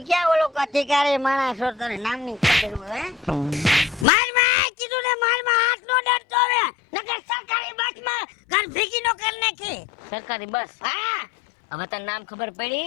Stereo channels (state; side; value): drops out; right; at 4.0 s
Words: ક્યાં ઓલો અધિકારી માણસ છો તને નામની ખબર હોય માર માં કીધું ને માર માં હાથ નો ડરતો હવે નકર સરકારી બસમાં ઘર ભીગી નો કર નાખી સરકારી બસ હા હવે તને નામ ખબર પડી